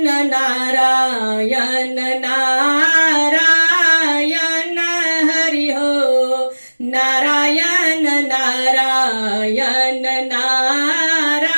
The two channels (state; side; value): inverted; both; correlation -1.00